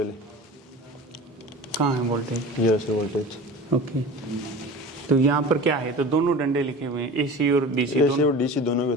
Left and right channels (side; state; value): both; normal; correlation 0.35